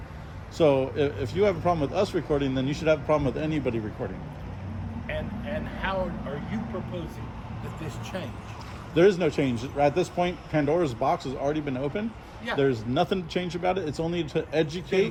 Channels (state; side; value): identical; both; correlation 1.00